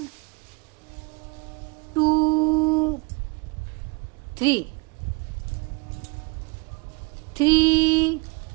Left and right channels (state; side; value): quieter; left; 28.6 dB